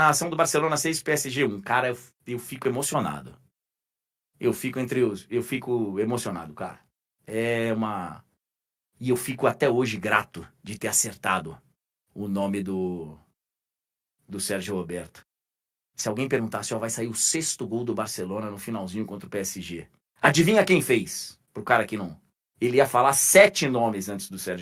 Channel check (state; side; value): identical; both; correlation 1.00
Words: do Barcelona 6 PSG 1? Cara, eu fico emocionado. Eu fico emocionado, cara. E eu fico até hoje grato de ter acertado o nome do Sérgio Roberto. Se alguém perguntasse, vai sair o 6º gol do Barcelona no finalzinho contra o PSG. Adivinha quem fez? Pro cara que não... Ele ia falar 7 nomes antes do